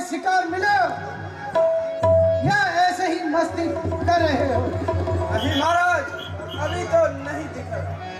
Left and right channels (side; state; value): both; identical; correlation 1.00